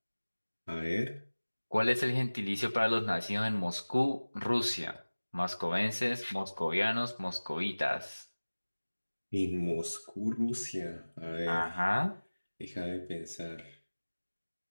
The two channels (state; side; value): inverted; both; correlation -1.00